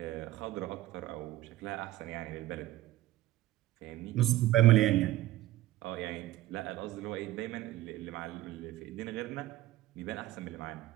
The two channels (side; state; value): left; quieter; 15.9 dB